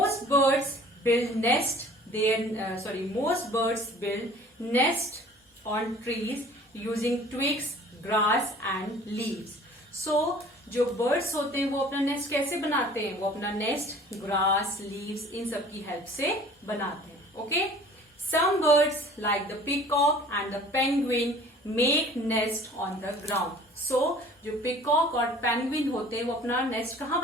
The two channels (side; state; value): both; normal; correlation 0.48